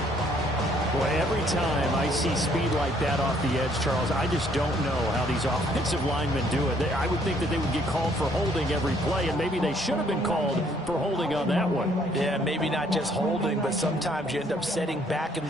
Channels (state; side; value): normal; both; correlation 0.65